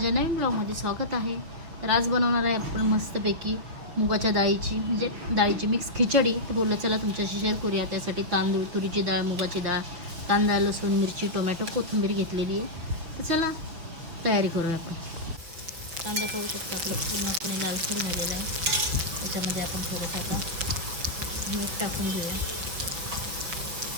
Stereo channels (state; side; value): late; left; 6.1 ms